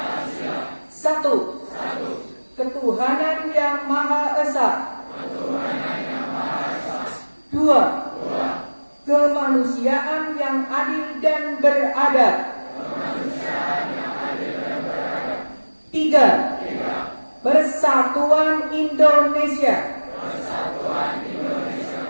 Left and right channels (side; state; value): both; inverted; correlation -1.00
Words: Satu. Ketuhanan yang Maha Esa. Dua. Kemanusiaan yang adil dan beradab. Tiga. Persatuan Indonesia.